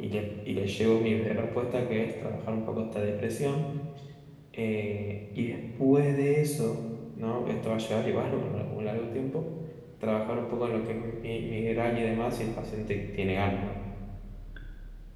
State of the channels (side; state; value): both; identical; correlation 1.00